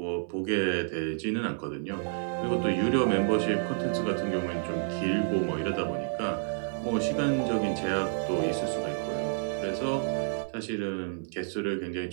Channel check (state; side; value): silent; left; 56 dB below the other